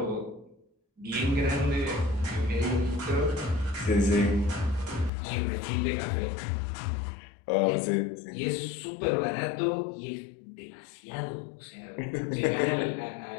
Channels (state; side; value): drops out; right; at 5.1 s